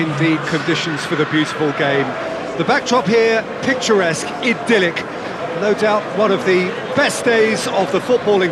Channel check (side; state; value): both; identical; correlation 1.00